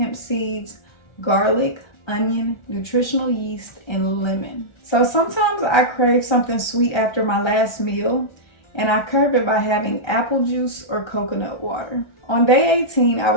seeds, garlic, onion, nutritional yeast, and lemon. So sometimes I crave something sweet after my last meal, and I curb it by having apple juice or coconut water. On day 18, I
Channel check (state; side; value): late; right; 1.4 ms